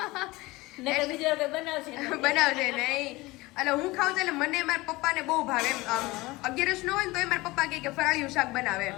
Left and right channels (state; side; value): quieter; right; 21.3 dB